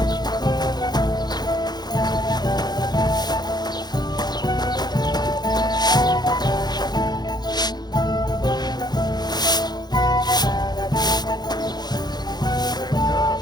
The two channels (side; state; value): right; late; 0.20 ms